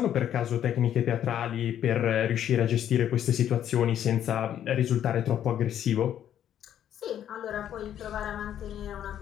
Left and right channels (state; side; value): quieter; right; 10.4 dB